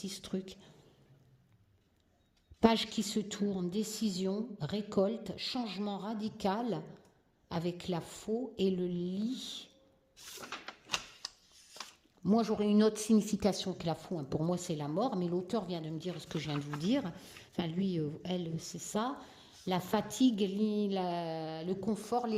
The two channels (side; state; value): both; identical; correlation 1.00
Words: ce truc. Page qui se tourne, décision, récolte, changement radical avec la faux et le lit. Moi, j'aurais une autre signification que la faux. Hein. Pour moi, c'est la mort, mais l'auteur vient de me dire ce que je viens de vous dire. Enfin, lui, elle, c'est ça. La fatigue, le confort,